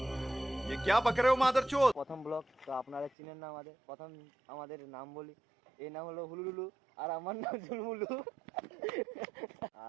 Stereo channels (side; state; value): left; drops out; at 3.1 s